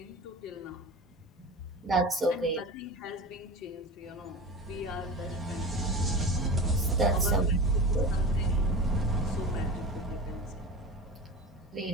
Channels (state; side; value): normal; both; correlation 0.31